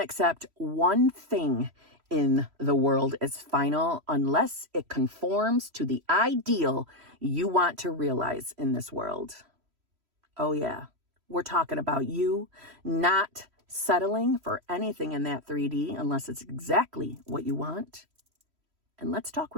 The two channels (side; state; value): left; late; 3.1 ms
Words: one thing in the world as final unless it conforms to the ideal you want to realize in this world. Oh yeah, we're talking about you not settling for anything in that 3D unless it's exactly what you want. And let's talk